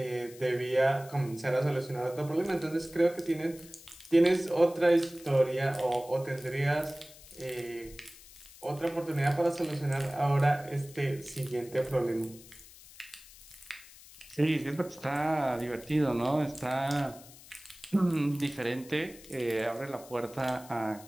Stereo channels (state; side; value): noise; left; hiss, 20 dB below the sound